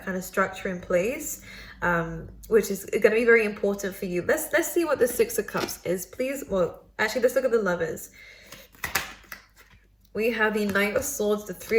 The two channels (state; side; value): identical; both; correlation 1.00